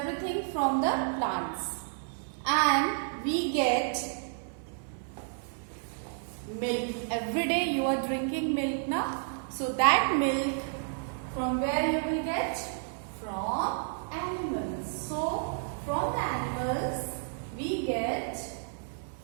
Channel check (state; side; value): silent; left; 57 dB below the other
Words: from the plants. And we get milk. Every day you are drinking milk now. So that milk, from where you will get? From animals. So from the animals we get